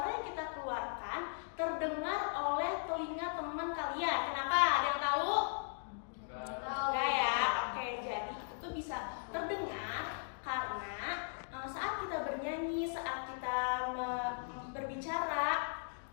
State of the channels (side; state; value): right; silent; digital silence